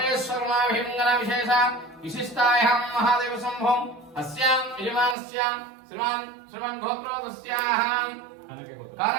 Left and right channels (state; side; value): drops out; left; at 5.2 s